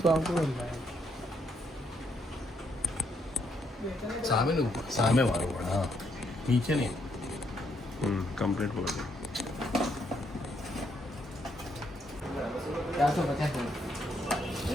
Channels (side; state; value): both; normal; correlation 0.74